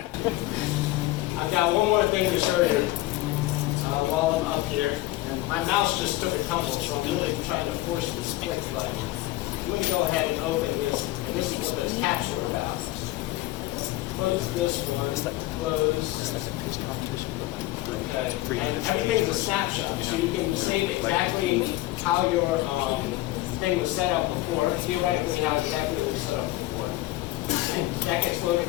I've got one more thing to show you while I'm up here. And my mouse just took a tumble, so I'm really trying to force this click button. I'm going to go ahead and open this, and this is what this caps are about. Close this one, close. Okay. And everything's a snapshot, so you can save exactly how your thing was set up before, theoretically how exactly it was set up before. And that gets loaded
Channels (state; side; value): quieter; right; 17.4 dB